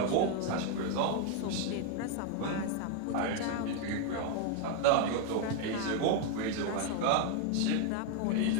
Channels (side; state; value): both; different; correlation 0.00